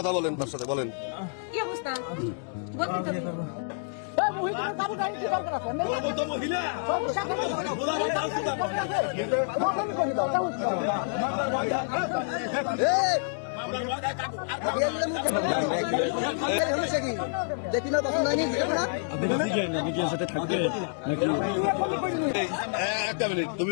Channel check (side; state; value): right; silent; digital silence